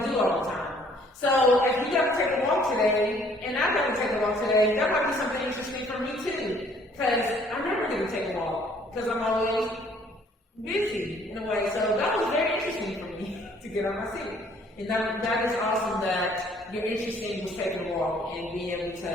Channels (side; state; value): both; normal; correlation 0.60